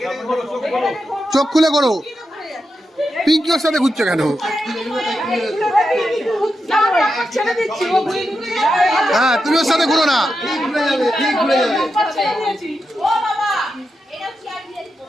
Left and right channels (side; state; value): both; normal; correlation 0.87